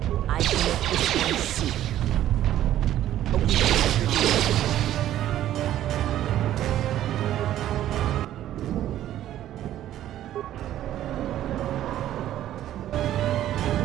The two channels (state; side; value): quieter; left; 12.5 dB